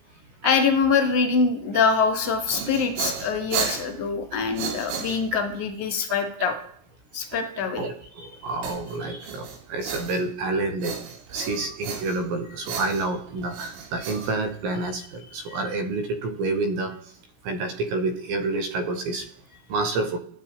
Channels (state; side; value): late; left; 17 ms